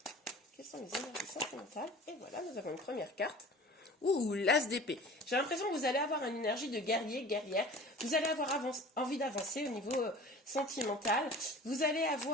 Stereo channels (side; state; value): both; normal; correlation 0.42